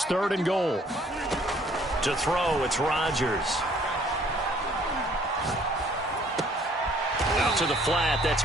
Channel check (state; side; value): normal; both; correlation 0.60